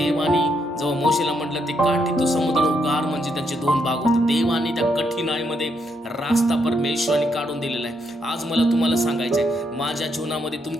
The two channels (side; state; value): both; normal; correlation 0.77